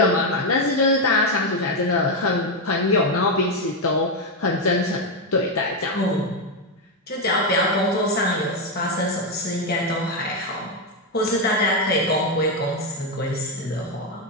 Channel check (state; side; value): normal; both; correlation 0.05